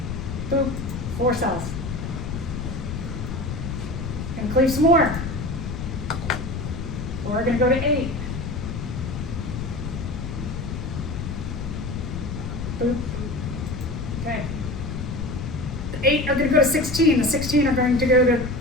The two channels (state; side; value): noise; left; rumble, 5 dB below the sound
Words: Boop. 4 cells. Gonna cleave some more. We're gonna go to 8. Boop. Okay. The 8 are going to go to 16. The 16 are going to go to